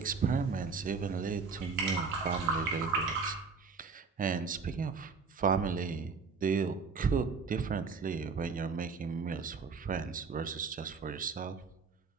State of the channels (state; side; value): quieter; left; 5.0 dB